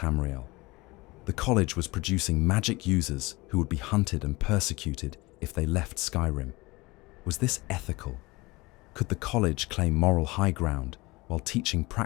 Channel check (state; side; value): quieter; right; 22.7 dB